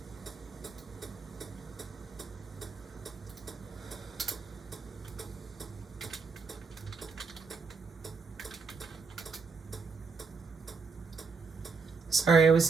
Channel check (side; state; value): left; quieter; 4.9 dB